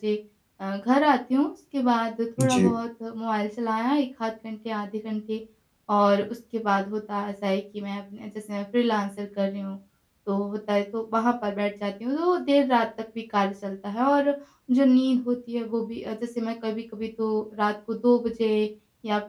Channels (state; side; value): identical; both; correlation 1.00